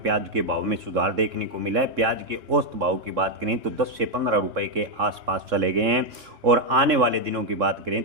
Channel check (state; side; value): late; left; 3.7 ms